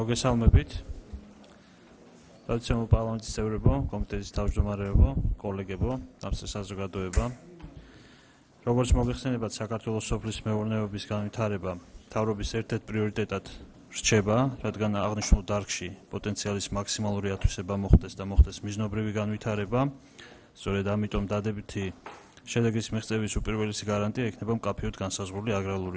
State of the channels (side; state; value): both; identical; correlation 1.00